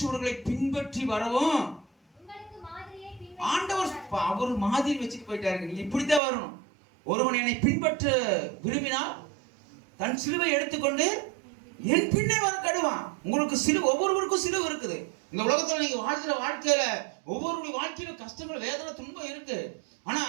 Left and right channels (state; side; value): drops out; left; at 6.2 s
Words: பின்பற்றி வரவும் ஆண்டவர் அவர் மாதிரி வச்சுட்டு போயிட்டாரு. நீங்க இப்படித்தான் வரணும். ஒருவன் என்னை பின்பற்ற விரும்பினால் தன் சிலுவை எடுத்துக்கொண்டு என் பின்னே வர கடுவான். உங்களுக்கு சிலுவை, ஒவ்வொருவருக்கும் சிலுவை இருக்குது. இந்த உலகத்துல நீங்க வாழ்கிற வாழ்க்கையில ஒவ்வொருடைய வாழ்க்கையில கஷ்டங்கள், வேதனை, துன்பம் இருக்கு. ஆனா